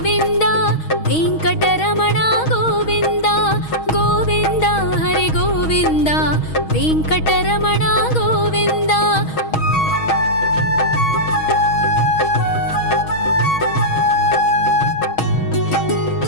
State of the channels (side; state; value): right; late; 6.3 ms